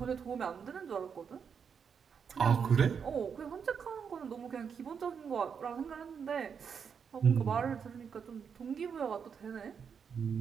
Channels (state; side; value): quieter; left; 6.7 dB